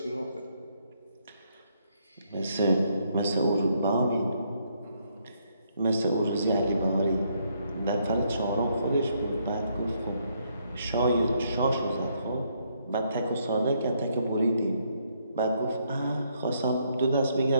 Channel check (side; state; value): both; inverted; correlation -0.72